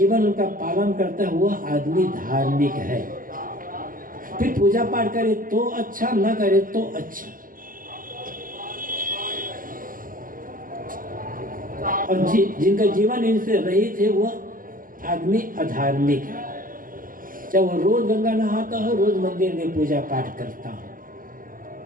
उनका पालन करता है, वह आदमी धार्मिक है। फिर पूजा पाठ करे तो अच्छा, न करे तो अच्छा। और जिनका जीवन इनसे रहित है वह आदमी अधार्मिक है। चाहे वो रोज गंगा नहाता हो, रोज मंदिर में पूजा पाठ करता हो।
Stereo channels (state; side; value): late; left; 0.41 ms